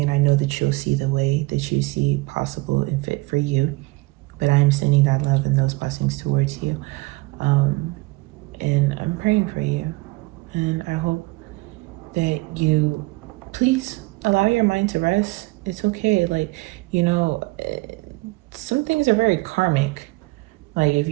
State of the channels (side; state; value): left; quieter; 23.6 dB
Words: and I know that that you'll see the way that you see possible and fit for you. But I am sending that love and those blessings towards you. And I'm praying for you. And I hope that you please allow your mind to rest. It's okay. Like, you know, some things are very karmic. Like, if